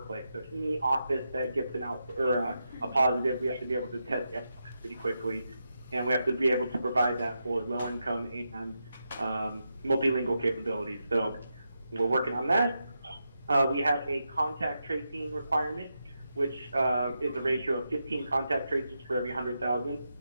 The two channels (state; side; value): inverted; both; correlation -0.86